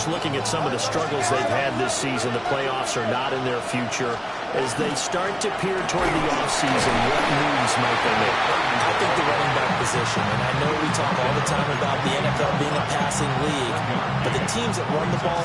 looking at some of the struggles they've had this season. The playoffs are not in their future. As they start to peer toward the offseason, what moves might they make? I think the running back position, and I know we talk all the time about the NFL being a passing league, but the teams that run the ball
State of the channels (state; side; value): identical; both; correlation 1.00